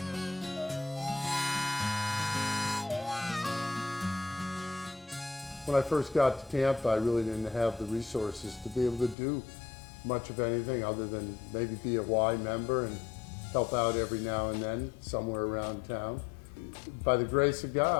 When I first got to Tampa, I really didn't have the resources to be able to do much of anything other than maybe be a Y member and help out every now and then somewhere around town. By the grace of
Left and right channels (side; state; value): right; drops out; at 9.2 s